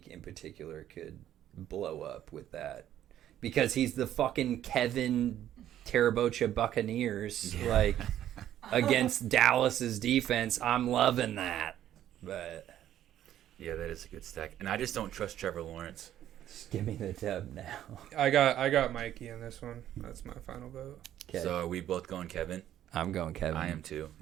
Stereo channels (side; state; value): left; quieter; 11.7 dB